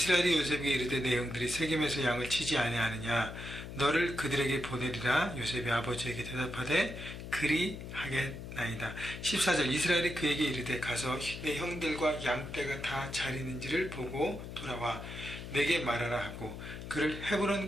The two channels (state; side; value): noise; left; hum, 9 dB below the sound